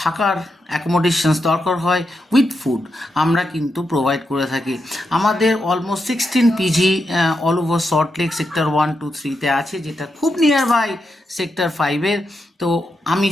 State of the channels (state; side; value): normal; both; correlation 0.85